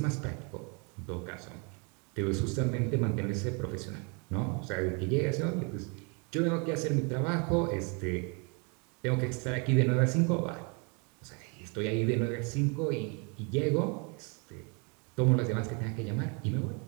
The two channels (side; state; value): left; quieter; 34.2 dB